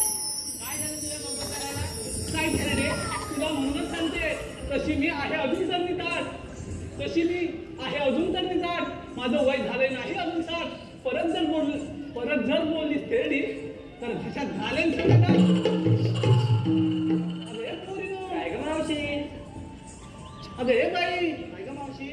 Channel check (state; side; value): identical; both; correlation 1.00